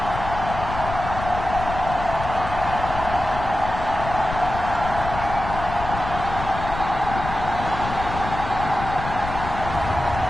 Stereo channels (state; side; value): noise; left; rumble, 7 dB below the sound